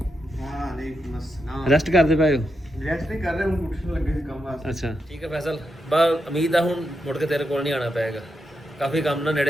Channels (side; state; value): both; normal; correlation 0.85